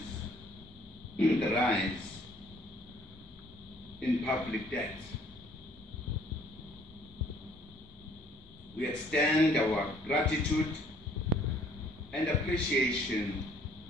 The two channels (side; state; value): both; normal; correlation 0.59